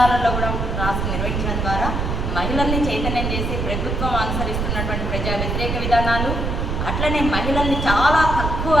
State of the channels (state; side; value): noise; right; rumble, 1 dB below the sound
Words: కూడా క్లాసులు నిర్వహించడం ద్వారా మహిళల్ని చైతన్యం చేసి ప్రభుత్వం అనుసరిస్తున్నటువంటి ప్రజా వ్యతిరేక విధానాలు, అట్లనే మహిళల్ని చాలా తక్కువ